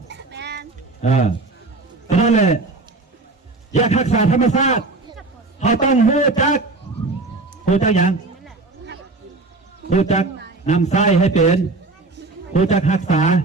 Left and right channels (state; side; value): quieter; left; 3.4 dB